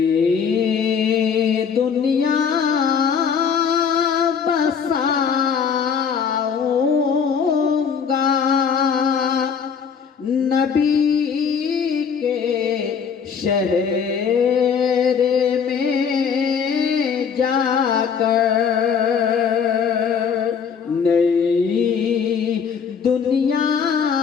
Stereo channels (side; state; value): right; quieter; 6.7 dB